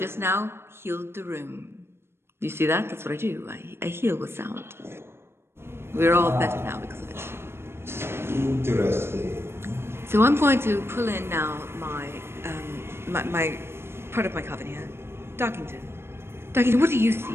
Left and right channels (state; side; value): late; left; 0.12 ms